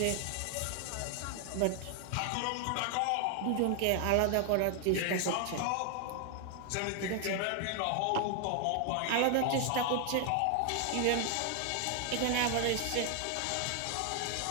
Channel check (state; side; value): different; both; correlation 0.00